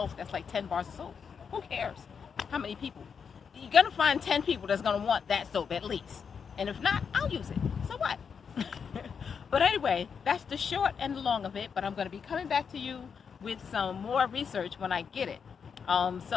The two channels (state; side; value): quieter; right; 6.4 dB